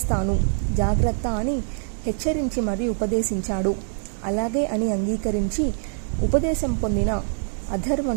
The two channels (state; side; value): silent; left; digital silence